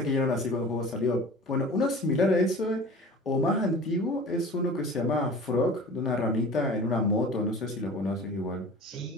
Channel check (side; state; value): both; normal; correlation 0.40